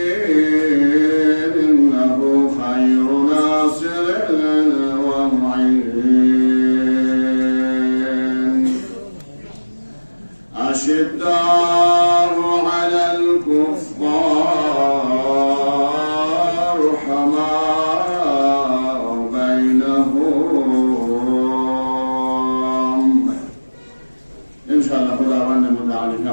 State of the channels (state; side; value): inverted; both; correlation -1.00